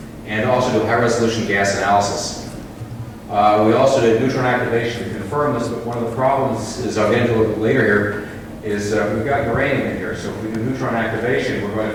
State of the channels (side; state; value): both; identical; correlation 1.00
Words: and also do high-resolution gas analysis. We also did neutron activation to confirm this, but one of the problems is, I'll get into it later here, is we've got uranium in here. So if we do neutron activation, we're going